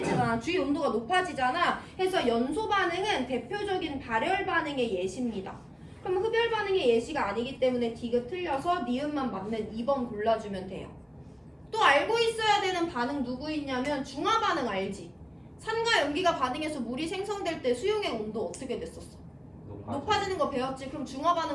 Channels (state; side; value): identical; both; correlation 1.00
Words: 주위 온도가 높아지잖아. 해서 연소 반응은 대표적인 발열 반응의 예시입니다. 그럼 흡열 반응의 예시가 아니기 때문에 디귿 틀려서 니은만 맞는 2번 골라주면 돼요. 또 알고 있어야 되는 반응 누구 있냐면 중화 반응 알지? 산과 염기가 반응해서 물이 생성될 때 수용의 온도 어떻게 됐었어? 높아지는 거 배웠지? 그럼 중화